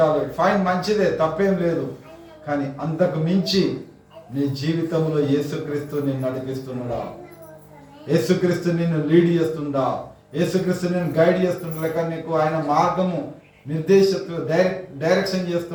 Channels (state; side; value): identical; both; correlation 1.00